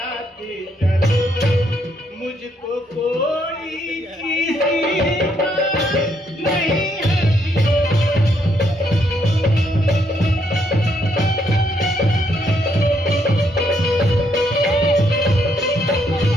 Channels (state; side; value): normal; both; correlation 0.73